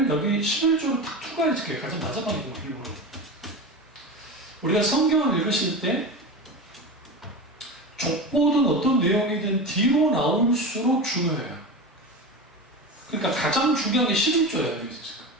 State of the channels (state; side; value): normal; both; correlation 0.25